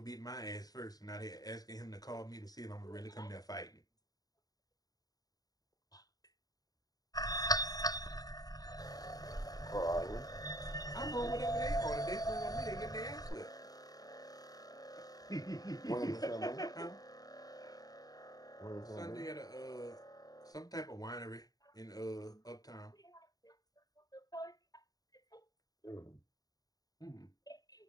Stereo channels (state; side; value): late; right; 0.18 ms